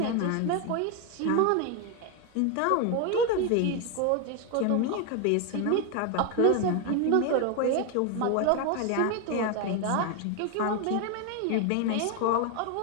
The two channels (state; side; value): different; both; correlation 0.01